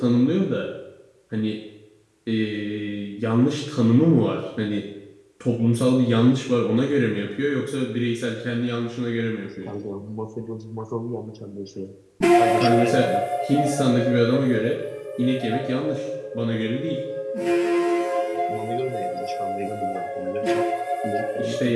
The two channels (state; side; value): identical; both; correlation 1.00